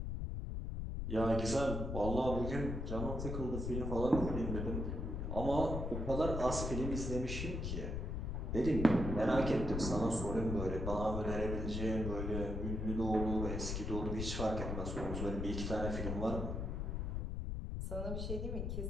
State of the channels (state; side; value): noise; left; rumble, 2 dB below the sound